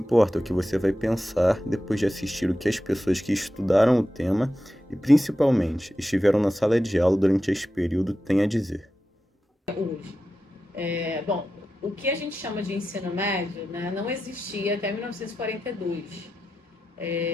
é o que você vai pensar depois de assistir o que as pessoas que estudaram o tema e, principalmente, estiveram na sala de aula durante esse período têm a dizer. Hoje. Bom, o que a gente chama de ensino médio, né, não existia até 1942.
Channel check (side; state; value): both; normal; correlation 0.91